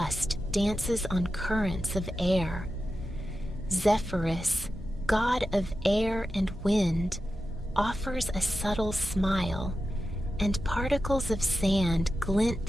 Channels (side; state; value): both; normal; correlation 0.92